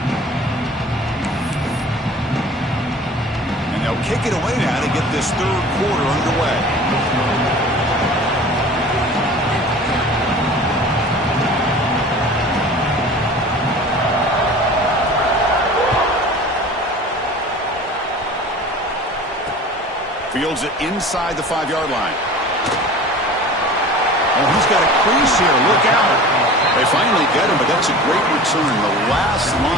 Kick it away now to get this 3rd quarter underway. Fields it inside the 5-yard line. Oh, he's got a crease here. Look out. They finally get him, but that's a great return. The last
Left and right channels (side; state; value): both; normal; correlation 0.41